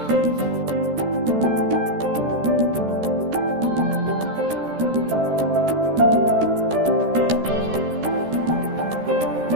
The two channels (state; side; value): late; left; 13 ms